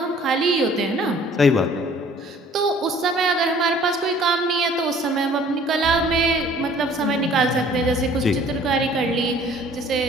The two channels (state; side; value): normal; both; correlation 0.54